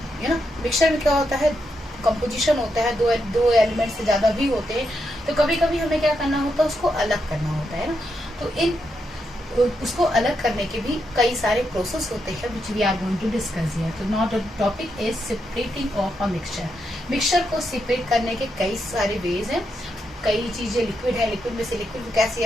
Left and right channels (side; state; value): both; normal; correlation 0.82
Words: you know, mixture में क्या होता है, कंपोजिशन होता है, दो एलिमेंट से ज्यादा भी होते हैं, तो कभी कभी हमें क्या करना होता है, उसको अलग करना होता है ना। तो इन उसको अलग करने के भी कई सारे प्रोसेस होते हैं which we are going to discuss here. तो not the topic is separating of a mixture. Mixture को सेपरेट करने के कई सारे वेज हैं। कई चीजें लिक्विड है, लिक्विड में से लिक्विड को कैसे